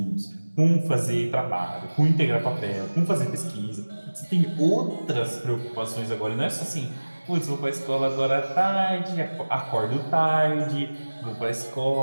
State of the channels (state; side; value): inverted; both; correlation -1.00